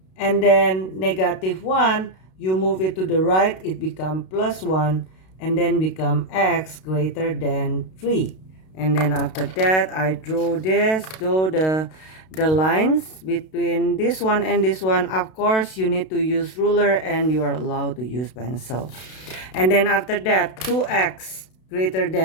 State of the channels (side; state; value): right; late; 32 ms